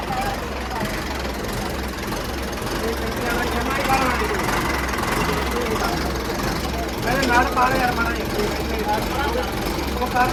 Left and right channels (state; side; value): identical; both; correlation 1.00